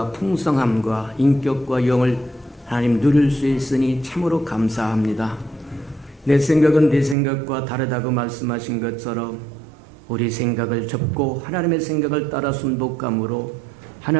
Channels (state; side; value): drops out; left; at 7.2 s